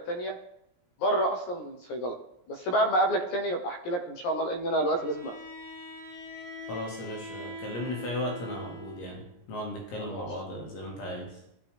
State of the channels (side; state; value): right; late; 17 ms